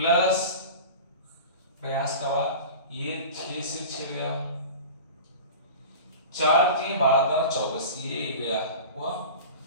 प्रयास का बाद ये 6 से 6 गया, 4 3 12 24 ये गया हुआ,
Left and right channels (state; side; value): inverted; both; correlation -0.34